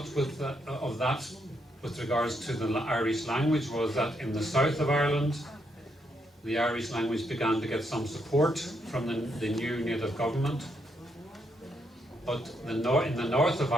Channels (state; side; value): normal; both; correlation 0.77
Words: of that, with regards to the Irish language, was that in the south of Ireland, the Irish language began to get some support from the new native government. But in the north of